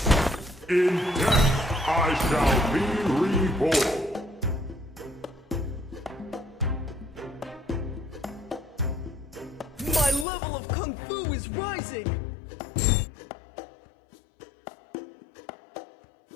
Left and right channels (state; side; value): drops out; right; at 10.2 s